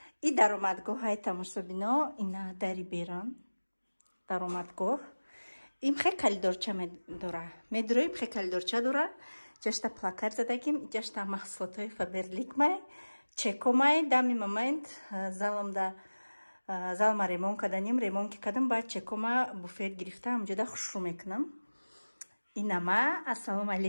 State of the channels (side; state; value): both; inverted; correlation -1.00